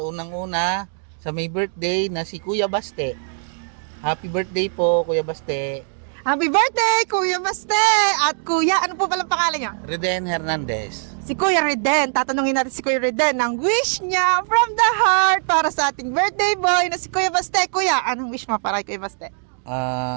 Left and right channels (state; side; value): silent; left; digital silence